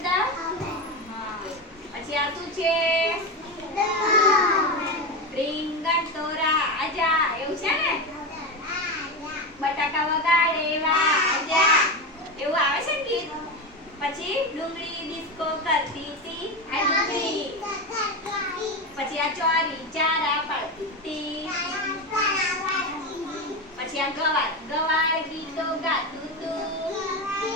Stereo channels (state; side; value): normal; both; correlation 0.17